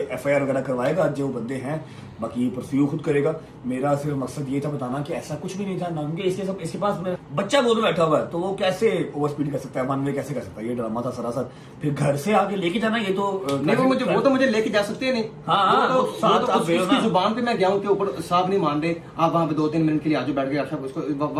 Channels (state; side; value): identical; both; correlation 1.00